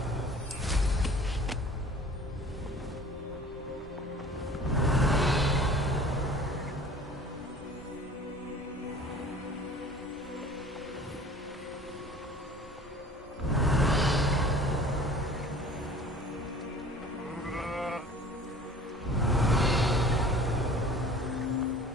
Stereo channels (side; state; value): both; normal; correlation 0.46